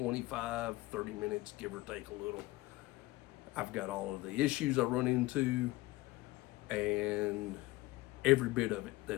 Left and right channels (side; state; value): right; quieter; 19.6 dB